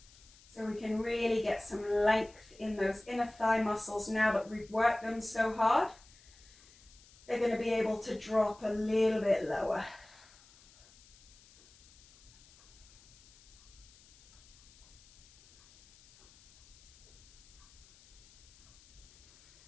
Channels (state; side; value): noise; left; hiss, 25 dB below the sound